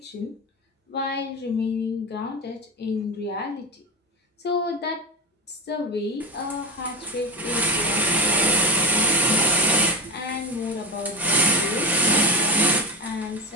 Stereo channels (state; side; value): normal; both; correlation 0.17